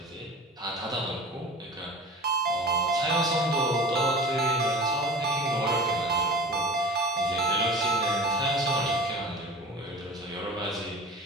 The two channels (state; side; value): normal; both; correlation 0.38